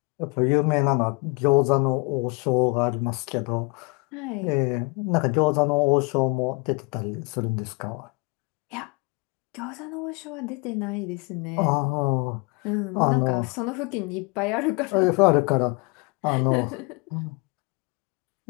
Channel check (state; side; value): quieter; right; 29.6 dB